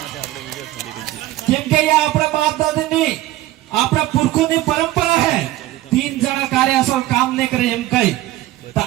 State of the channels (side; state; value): left; quieter; 15.9 dB